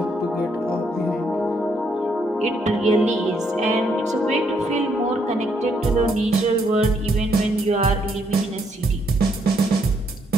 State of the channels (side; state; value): both; normal; correlation 0.73